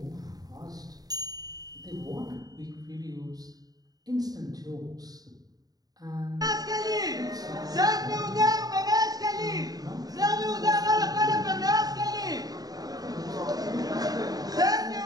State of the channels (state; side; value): late; left; 0.18 ms